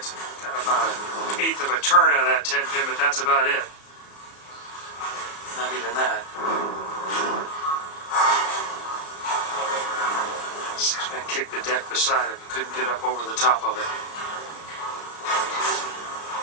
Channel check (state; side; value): late; right; 34 ms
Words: about an eighth of a turn out of that 10 pin, but that's about it. Not even that. 6-man kicked the deck beside him, couldn't get up over the top of it.